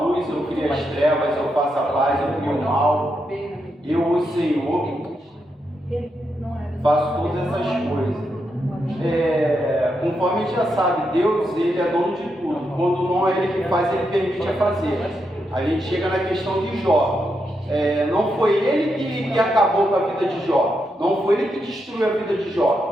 luz, eu crio as trevas, eu faço a paz, eu crio o mal. Eu, o Senhor, faço todas essas coisas. Conforme a gente já sabe, Deus, ele é dono de tudo. Quando não é ele que faz, ele permite a fazer. A gente chega na questão de Jó. Não foi ele que acabou com a vida de Jó. Não foi ele que destruiu a vida de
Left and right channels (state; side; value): normal; both; correlation 0.83